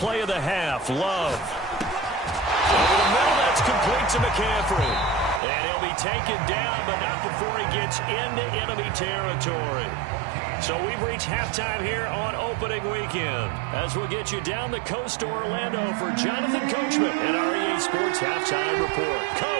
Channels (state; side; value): drops out; left; at 5.4 s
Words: of the half, Love. Over the middle, that's complete to McCaffrey. And he'll be taken down, but not before he gets into enemy territory. So we've reached halftime here on opening weekend as we'll get you down the coast to Orlando for Jonathan Coachman and our EA Sports Halftime Report.